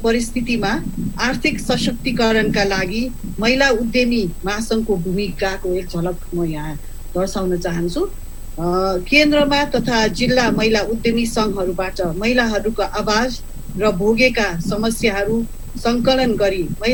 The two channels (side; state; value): both; identical; correlation 1.00